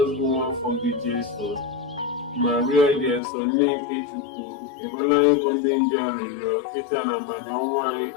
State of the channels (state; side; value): drops out; right; at 3.2 s